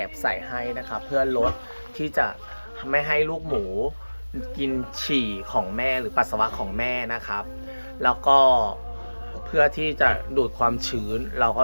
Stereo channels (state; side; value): inverted; both; correlation -1.00